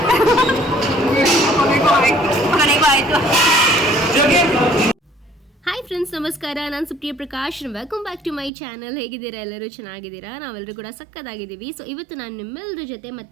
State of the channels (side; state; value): left; drops out; at 8.5 s